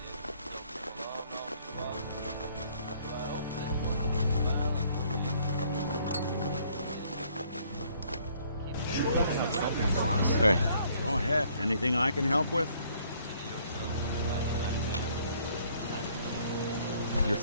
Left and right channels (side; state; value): both; inverted; correlation -0.63